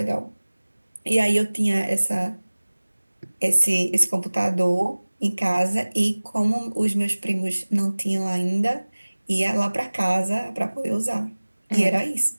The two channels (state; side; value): inverted; both; correlation -1.00